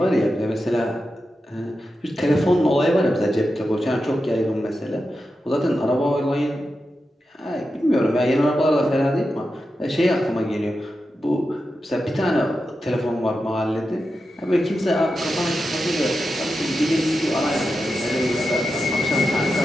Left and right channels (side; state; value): both; normal; correlation 0.90